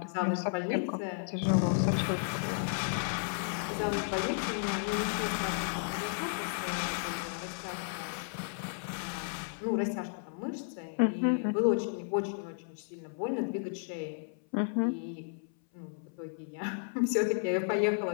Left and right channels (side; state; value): right; silent; 56 dB below the other